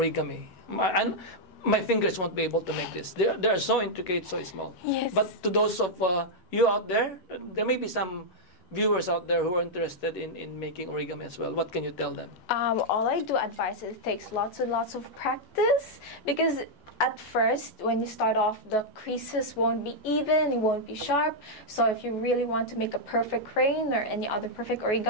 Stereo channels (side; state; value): right; late; 12 ms